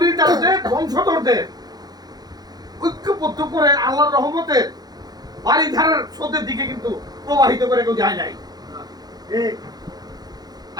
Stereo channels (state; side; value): late; left; 0.19 ms